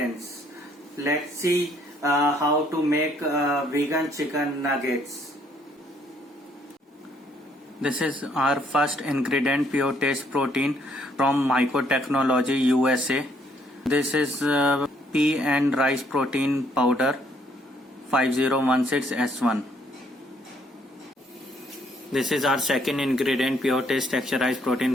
Let's see how to make vegan chicken nuggets. This is our first ingredient, Pure Taste Protein from Myco Technology USA. This is pea and rice protein powder 5016S1. This is our second ingredient, Pure Taste Texturized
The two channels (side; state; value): both; normal; correlation 0.67